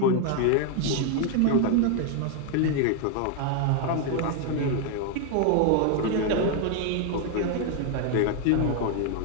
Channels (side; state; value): both; different; correlation 0.00